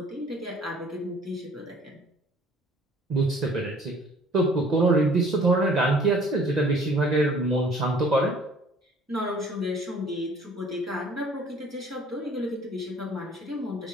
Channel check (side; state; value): both; normal; correlation 0.54